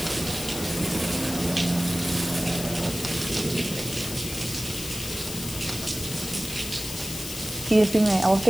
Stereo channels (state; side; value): noise; left; hiss, 8 dB below the sound